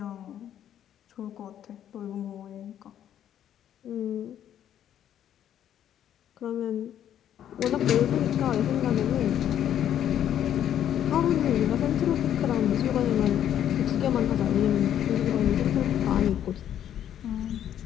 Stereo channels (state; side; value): quieter; right; 10.4 dB